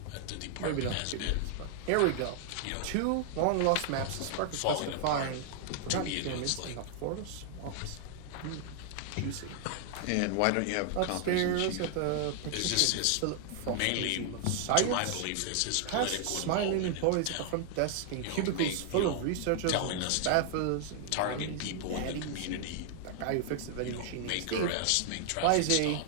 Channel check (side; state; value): both; different; correlation 0.00